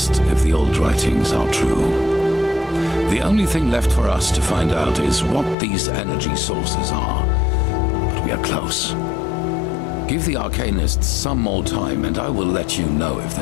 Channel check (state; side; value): drops out; right; at 5.6 s